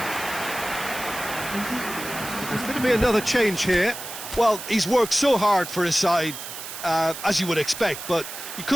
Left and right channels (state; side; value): noise; right; hiss, 10 dB below the sound